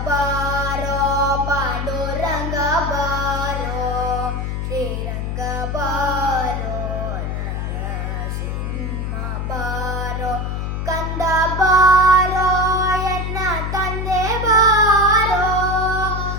बारो पांडुरंग बारो श्रीरंग बारो नरसिंह बारो कंद बारो ಎನ್ನ ತಂದೆ ಬಾರೋ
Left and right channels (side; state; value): left; noise; hum, 3 dB below the sound